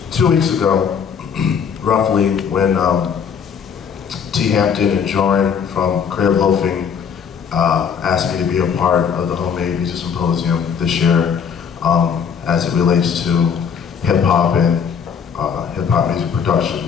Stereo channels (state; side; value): quieter; right; 7.0 dB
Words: 2 weeks ago, roughly, when T. Hampton and Joran from Creative Loafing asked me to be a part of the Homemade Music Symposium this year as it relates to hip-hop and hip-hop music